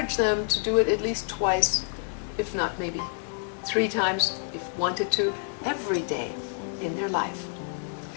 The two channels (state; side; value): silent; right; 59 dB below the other